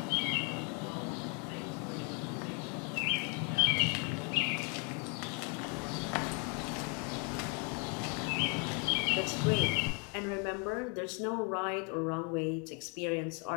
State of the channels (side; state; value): right; quieter; 34.8 dB